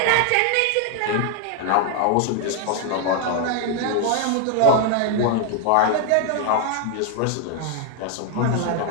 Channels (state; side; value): different; both; correlation 0.00